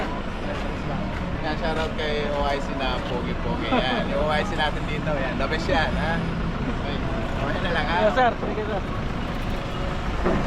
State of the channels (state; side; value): identical; both; correlation 1.00